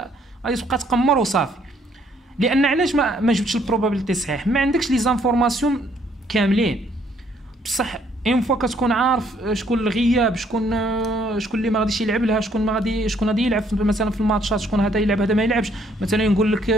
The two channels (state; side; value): normal; both; correlation 0.66